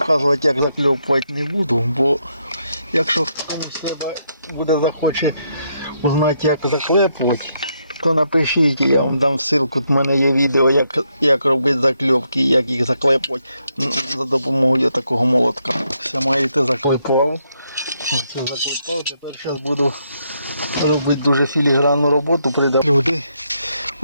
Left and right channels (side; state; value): both; inverted; correlation -0.78